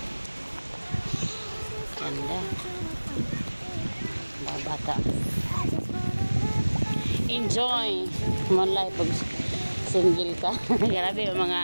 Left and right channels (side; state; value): both; inverted; correlation -1.00